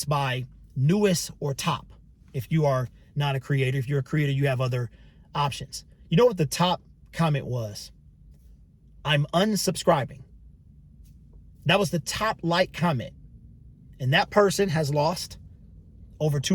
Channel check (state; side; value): identical; both; correlation 1.00